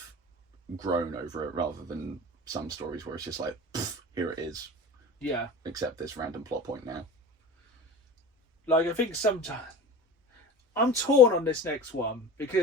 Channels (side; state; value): both; normal; correlation 0.35